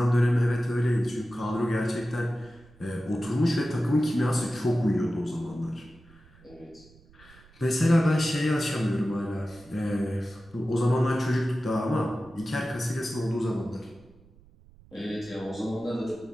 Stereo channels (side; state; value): right; noise; rumble, 26 dB below the sound